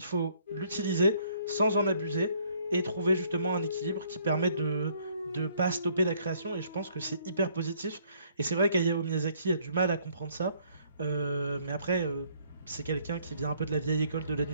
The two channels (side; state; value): both; inverted; correlation -0.64